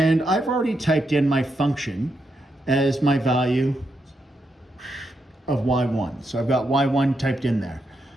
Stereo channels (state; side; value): normal; both; correlation 0.82